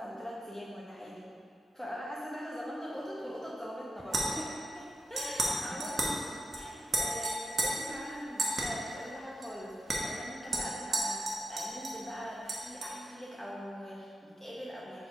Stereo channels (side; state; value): both; normal; correlation 0.87